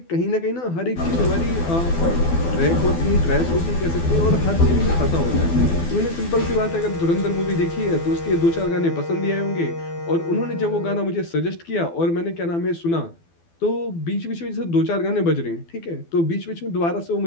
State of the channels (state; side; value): late; right; 12 ms